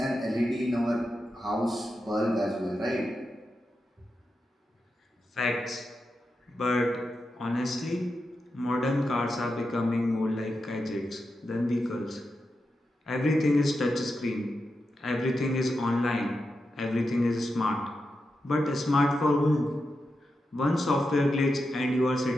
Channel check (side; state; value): both; normal; correlation 0.88